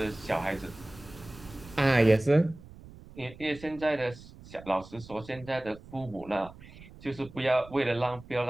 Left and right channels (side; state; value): right; noise; rumble, 19 dB below the sound